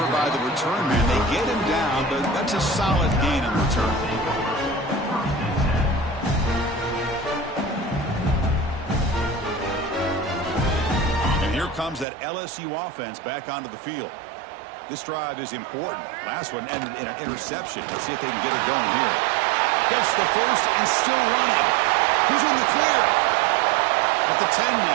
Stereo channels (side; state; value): left; drops out; at 12.1 s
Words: by the return man. They get him down, but that's a solid gain in return. And here comes that LSU offense back onto the field. This drive is important. Last one ended in an interception. Let's see if they can get it going here. Gets the first and still running. He's in the clear. At the 10